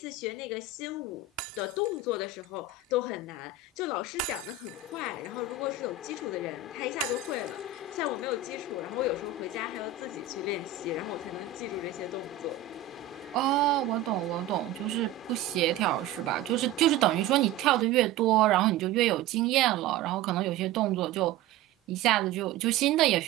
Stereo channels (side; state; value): left; quieter; 6.7 dB